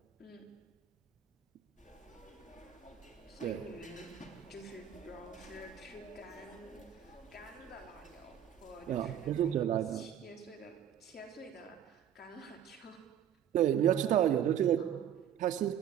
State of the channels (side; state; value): left; quieter; 9.7 dB